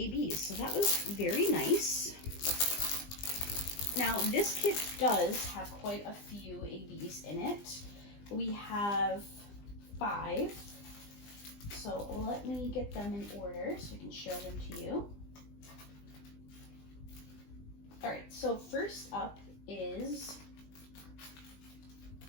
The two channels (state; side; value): late; right; 20 ms